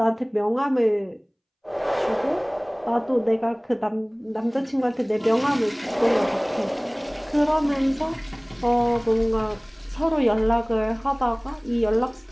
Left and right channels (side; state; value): both; identical; correlation 1.00